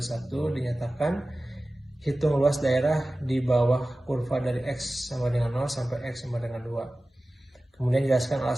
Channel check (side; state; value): both; normal; correlation 0.96